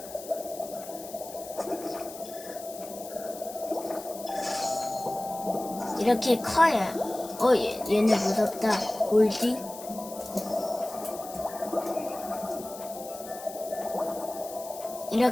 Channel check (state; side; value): noise; left; hiss, 15 dB below the sound